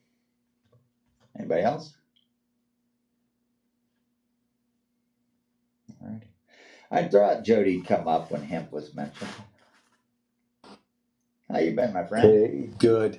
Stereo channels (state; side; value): identical; both; correlation 1.00